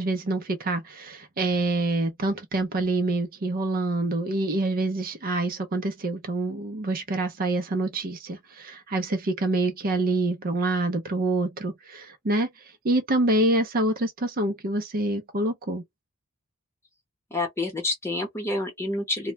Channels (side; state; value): both; normal; correlation 0.52